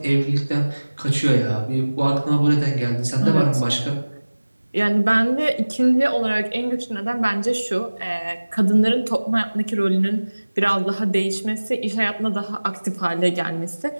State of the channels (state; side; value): inverted; both; correlation -1.00